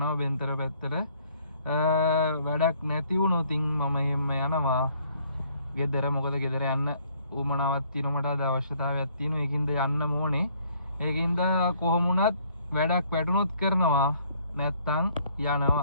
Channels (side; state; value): both; inverted; correlation -0.63